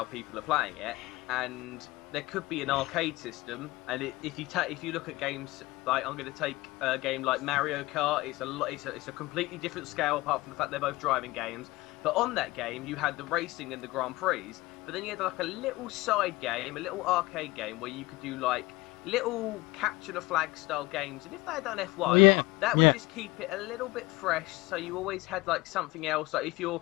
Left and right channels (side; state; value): right; quieter; 20.7 dB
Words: people are playing it, and there could be an arcade system. And if you look at games like, I'm going to take a game like Mario Kart, it's a completely different scale apart from the fact they're both driving games. But on that game, you had the racing and the Grand Prix, but then you had like a little side game, a little arcade game where you could do like little capture the flag style games. And if they had done F1, that would just keep it a little bit fresh. So you always had like something else. Like if